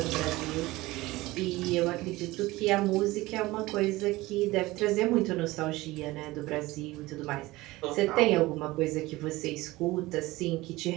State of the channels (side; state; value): left; quieter; 19.5 dB